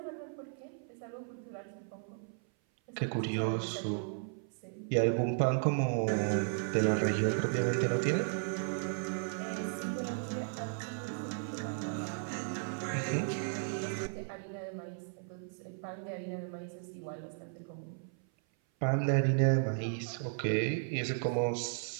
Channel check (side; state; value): left; silent; 54 dB below the other